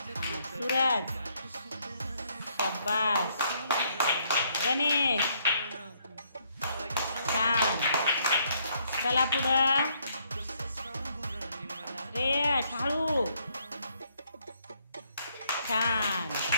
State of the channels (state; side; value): inverted; both; correlation -0.70